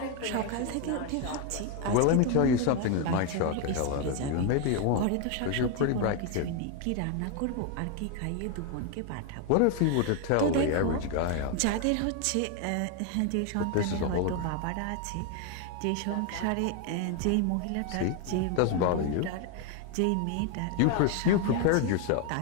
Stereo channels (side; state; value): both; different; correlation 0.01